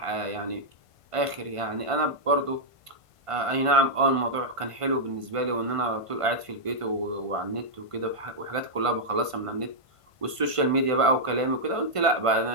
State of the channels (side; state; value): left; late; 1.5 ms